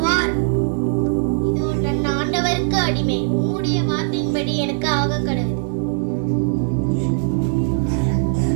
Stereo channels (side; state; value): left; silent; digital silence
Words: இதோ நான் ஆண்டவருக்கு அடிமை. உம்முடைய வார்த்தையின்படி எனக்கு ஆக கடவுள்.